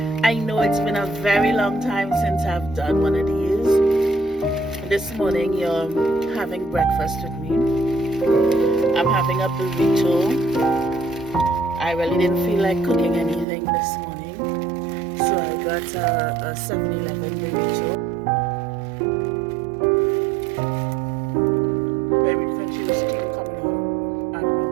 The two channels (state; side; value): drops out; left; at 13.5 s